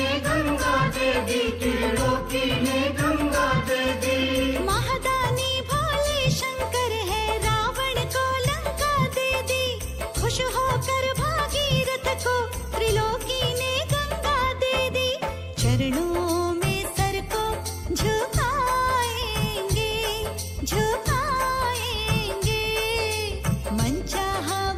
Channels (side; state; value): both; identical; correlation 1.00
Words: गंगा दे दी, त्रिलोकी ने गंगा दे दी। महादानी भोले शंकर है, रावण को लंका दे दी। खुश होकर भागीरथ को त्रिलोकी ने गंगा दे दी। चरणों में सर को झुकाएंगे, झुकाएंगे। मन चाहा